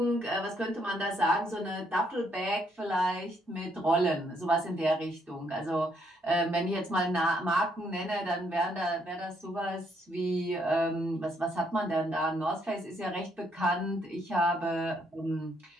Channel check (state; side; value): normal; both; correlation 0.71